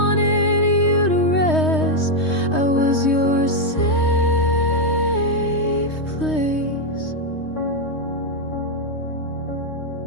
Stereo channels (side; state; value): right; late; 3.2 ms